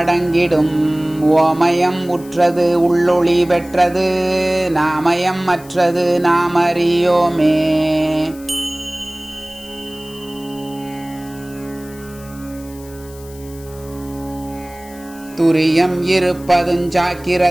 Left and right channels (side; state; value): left; noise; hiss, 21 dB below the sound